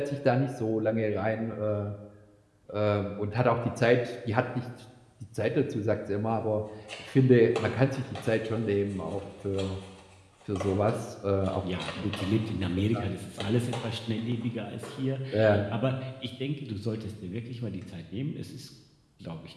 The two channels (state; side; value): identical; both; correlation 1.00